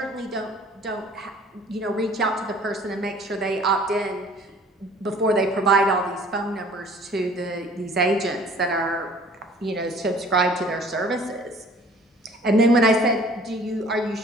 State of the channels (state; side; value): normal; both; correlation 0.52